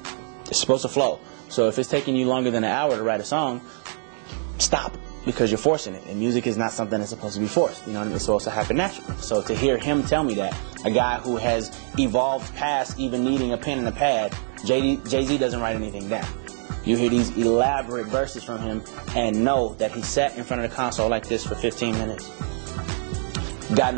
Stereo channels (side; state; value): left; silent; digital silence